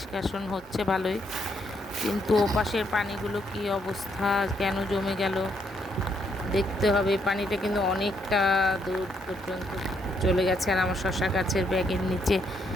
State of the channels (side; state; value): both; normal; correlation 0.74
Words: হচ্ছে ভালোই। কিন্তু ওপাশের পানিগুলো কি অবস্থা, কেন জমে গেল দেখতে হবে। পানিটা কিন্তু অনেকটা দূর পর্যন্ত চলে গেছে, আর আমার শশা গাছের ব্যাগের নিচে